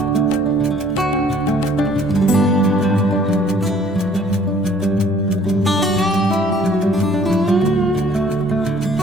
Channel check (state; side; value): normal; both; correlation 0.58